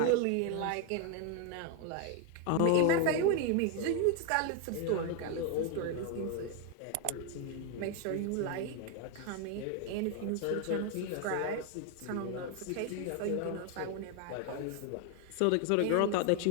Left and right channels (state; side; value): different; both; correlation 0.01